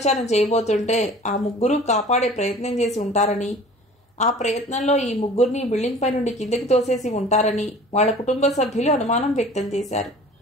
చేయబోతుంటే ఆ 3 కాపాడే ప్రయత్నం చేసి ఉంటారని, ఆ ప్రయత్నంలో ఈ 3 బిల్డింగ్ పై నుండి కిందకి తోసేసి ఉంటారని వాళ్ళ కుటుంబ సభ్యులు అనుమానం వ్యక్తం చేశారు.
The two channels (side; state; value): both; normal; correlation 0.45